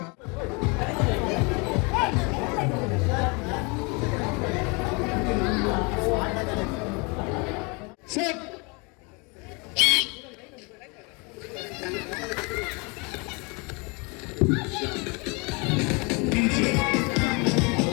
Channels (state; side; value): quieter; right; 30.3 dB